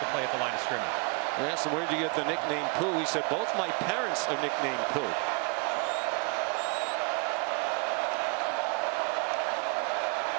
a play at the line of scrimmage. I asked him, where'd you get the nickname Pooh? He said, both my parents are nicknamed Pooh.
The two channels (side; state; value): left; quieter; 33.5 dB